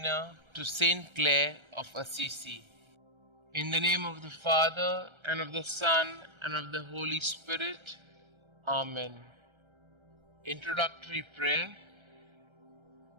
to St Clare of Assisi. In the name of the Father, and of the Son, and of the Holy Spirit. Amen. Introductory Prayer.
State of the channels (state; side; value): late; left; 1.3 ms